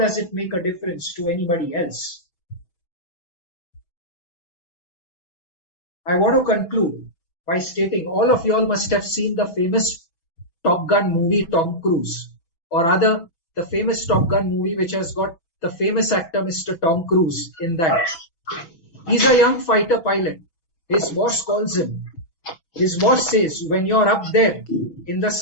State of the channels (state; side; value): late; right; 6.1 ms